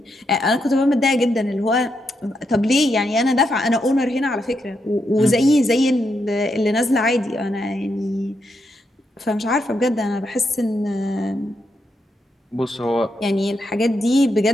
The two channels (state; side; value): normal; both; correlation 0.81